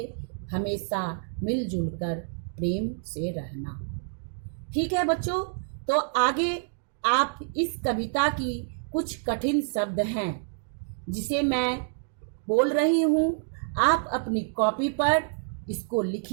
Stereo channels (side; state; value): left; silent; digital silence